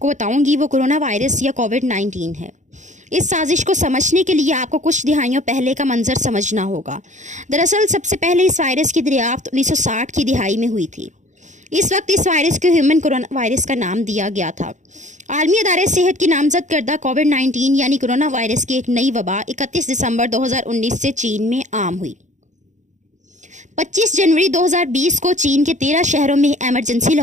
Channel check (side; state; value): left; late; 0.35 ms